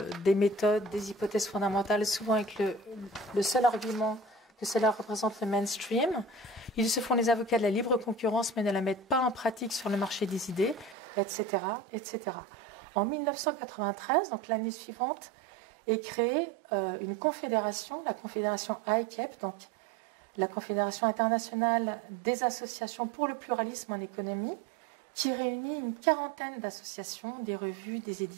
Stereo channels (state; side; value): drops out; left; at 11.0 s